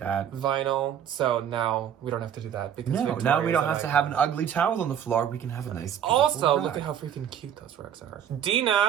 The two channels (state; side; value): quieter; left; 9.2 dB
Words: Vinyl. So now we don't have to do that because now we don't have to have an ugly towel on the floor. We can have a nice Also, rug. look at how freaking cute those rugs are.